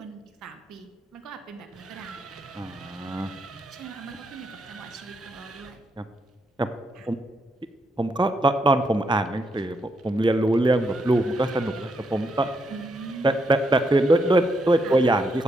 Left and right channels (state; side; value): normal; both; correlation 0.79